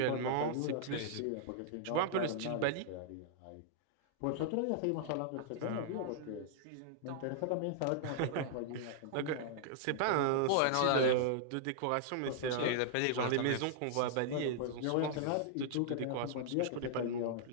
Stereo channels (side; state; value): both; different; correlation -0.01